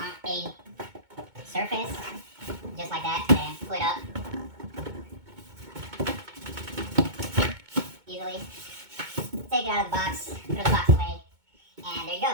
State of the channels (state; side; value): late; left; 2.2 ms